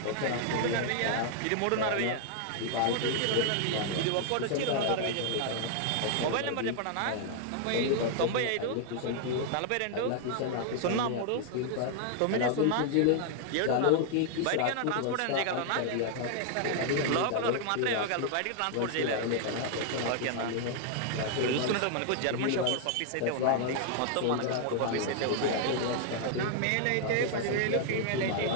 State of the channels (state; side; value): different; both; correlation 0.00